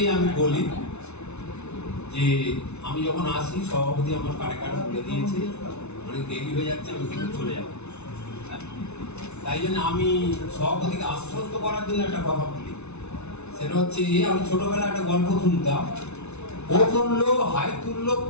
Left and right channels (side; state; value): right; late; 0.81 ms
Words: আমি বলি যে আমি যখন আসি সভাপতি আমার কানে কানে বলে দিয়েছে অনেক দেরি হয়ে যাচ্ছে, আমি কিন্তু চলে যাব। তাই জন্য আমি সভাপতিকে আশ্বস্ত করার জন্য একটা কথা বলি, সেটা হচ্ছে আমি ছোটবেলায় একটা গল্প শুনতাম, ও তুললো হাই তুললো